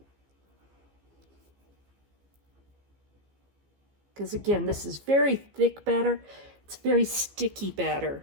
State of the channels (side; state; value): left; late; 15 ms